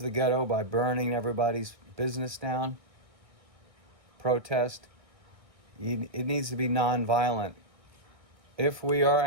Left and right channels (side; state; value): left; late; 1.6 ms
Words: ghetto by burning everybody's business down? Protest? It needs to be nonviolent. If we are